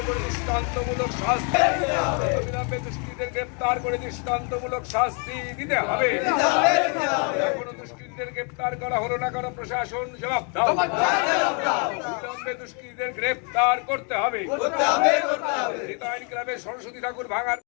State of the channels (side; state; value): right; quieter; 37.7 dB